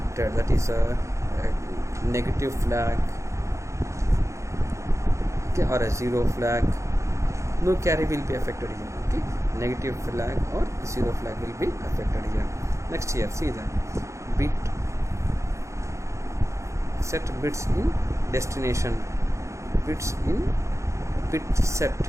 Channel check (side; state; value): left; late; 0.14 ms